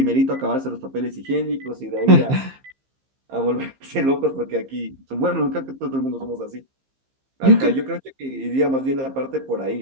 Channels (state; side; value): late; left; 15 ms